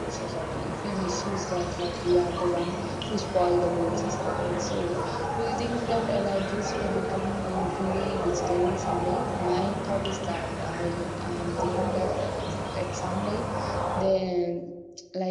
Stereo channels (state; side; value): identical; both; correlation 1.00